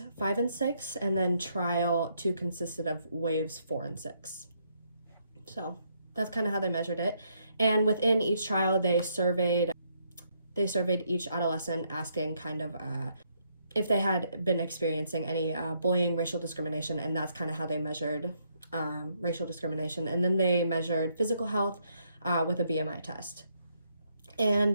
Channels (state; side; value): inverted; both; correlation -0.73